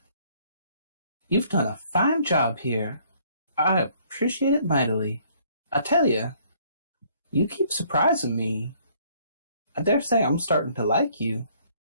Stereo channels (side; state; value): both; inverted; correlation -0.62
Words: you've done a fine job here. I appreciate it mightily. I tell you, you keep surprising me. I dare say I'm starting to like you.